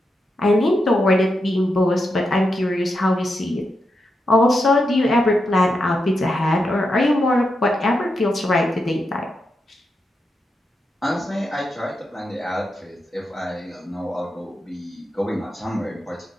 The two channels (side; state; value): both; normal; correlation 0.86